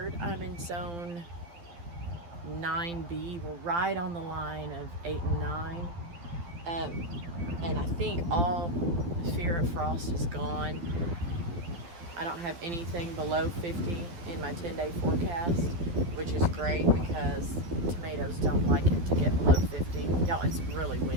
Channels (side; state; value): left; late; 12 ms